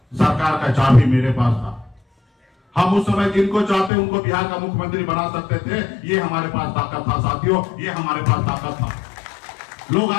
सरकार का चाबी मेरे पास था। हम उस समय जिनको चाहते उनको बिहार का मुख्यमंत्री बना सकते थे। ये हमारे पास ताकत था साथियों, ये हमारे पास ताकत था। लोग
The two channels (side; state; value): right; drops out; at 3.9 s